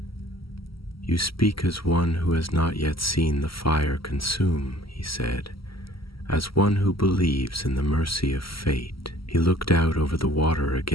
"You speak as one who has not yet seen the fire consume," he said, "as one who believes in the mercy of fate." He looked out over the water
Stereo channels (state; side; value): late; right; 0.75 ms